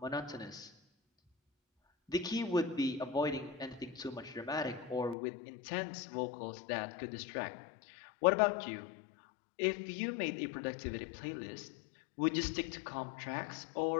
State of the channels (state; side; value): drops out; right; at 5.2 s